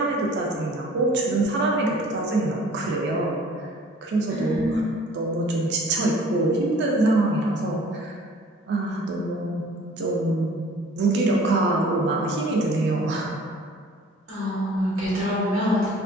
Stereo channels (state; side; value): normal; both; correlation 0.50